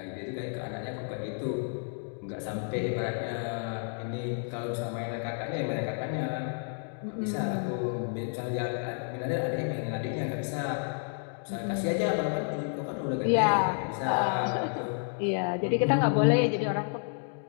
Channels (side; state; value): right; silent; 57 dB below the other